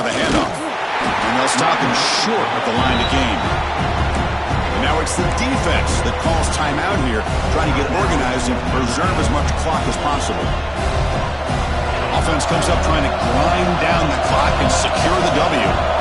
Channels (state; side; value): identical; both; correlation 1.00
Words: the handoff. And they'll stop him short at the line of game. And now it's the defense that calls timeout here, trying to get organized and preserve as much clock as possible. Offense comes up trying to grind down the clock and secure the W.